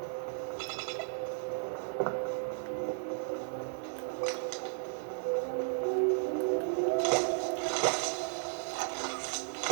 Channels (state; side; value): silent; left; 55 dB below the other